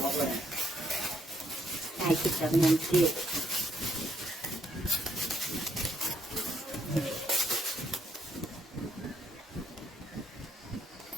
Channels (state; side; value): normal; both; correlation 0.73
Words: của bà ai cứ chậm nhâm tiết